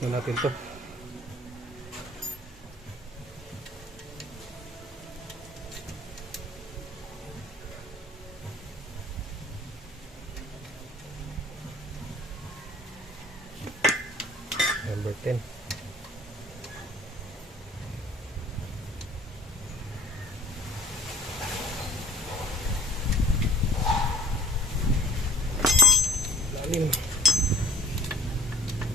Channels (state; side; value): normal; both; correlation 0.51